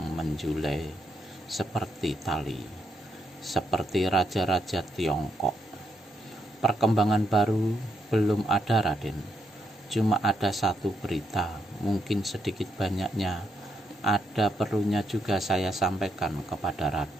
menjulai seperti tali, seperti raja-raja Tiongkok. "Perkembangan baru belum ada, Raden. Cuma ada satu berita, mungkin sedikit banyaknya ada perlunya juga saya sampaikan kepada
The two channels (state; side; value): normal; both; correlation 0.78